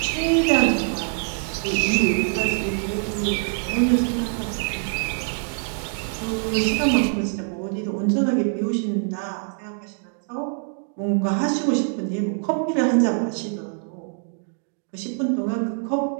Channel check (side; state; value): left; silent; 56 dB below the other